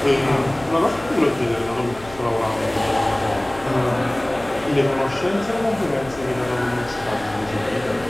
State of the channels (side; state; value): left; noise; hum, 20 dB below the sound